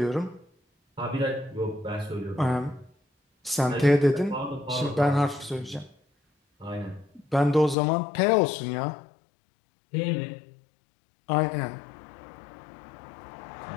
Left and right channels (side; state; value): right; drops out; at 7.8 s